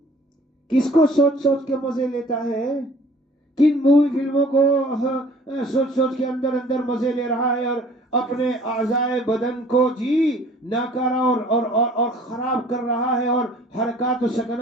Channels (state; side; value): normal; both; correlation 0.52